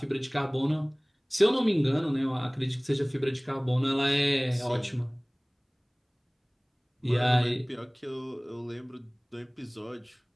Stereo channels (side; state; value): both; identical; correlation 1.00